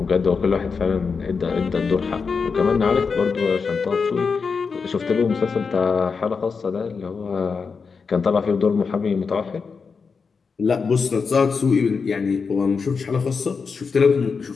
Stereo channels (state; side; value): quieter; right; 5.2 dB